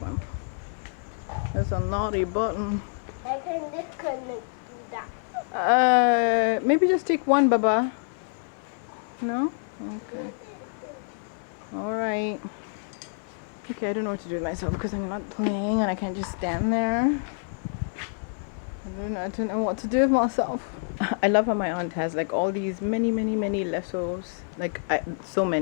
It's a naughty button. I can disconnect do that. Maybe just take one, Baba. No? Okay. Alright. Okay, I don't know what to do with myself because I'm not playing and I can't just stand there. I don't know what to do with myself. I love how my aunt has like all these many lassos, like so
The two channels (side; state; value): right; silent; digital silence